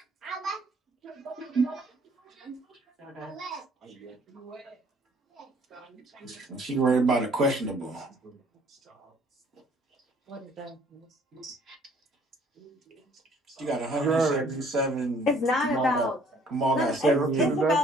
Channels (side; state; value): both; normal; correlation 0.59